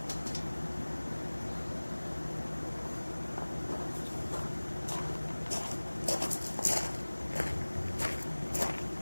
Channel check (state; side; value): inverted; both; correlation -1.00